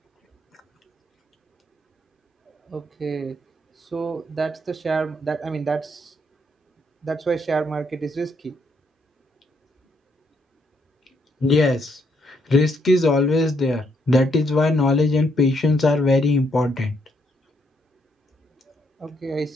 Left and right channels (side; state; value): both; normal; correlation 0.74